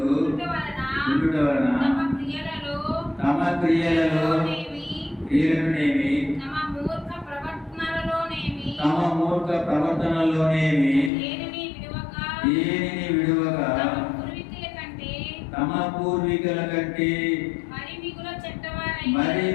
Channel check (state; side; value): drops out; right; at 11.1 s